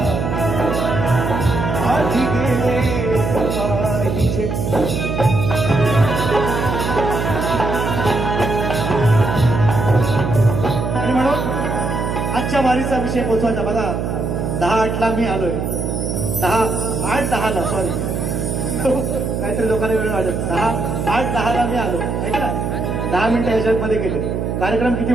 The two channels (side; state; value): right; noise; hum, 2 dB below the sound